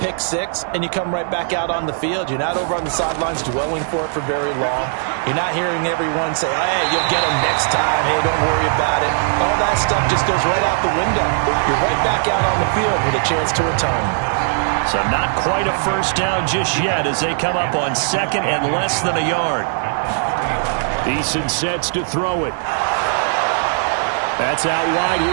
6 and you come right back out on the field. You're not over on the sidelines dwelling for it for very long. You're not hearing everyone say, oh, hey, you'll get them next time. Hey, don't worry about it. All that stuff just goes right out the window. You're right back out on the field with a chance to atone. So not quite a first down just yet as they come up on 2nd and less than a yard. Eason sets to throw it. That's out wide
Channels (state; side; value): silent; left; 67 dB below the other